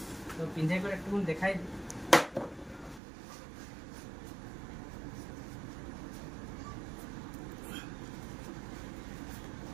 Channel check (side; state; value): left; drops out; at 3.0 s